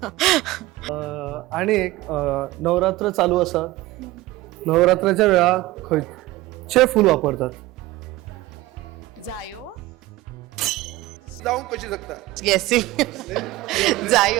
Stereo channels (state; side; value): quieter; left; 18.1 dB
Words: आणि एक नवरात्र चालू आसा. नवरात्राच्या वेळार खंयचे फूल वापरतात? जायो जाऊन कशी शकता गेसिंग